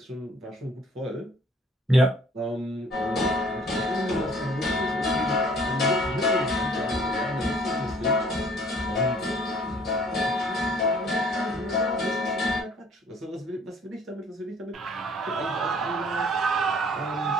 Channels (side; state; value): both; normal; correlation 0.56